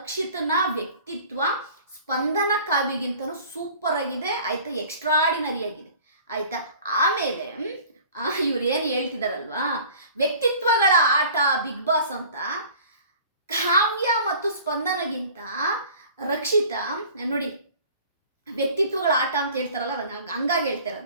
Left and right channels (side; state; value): both; inverted; correlation -0.47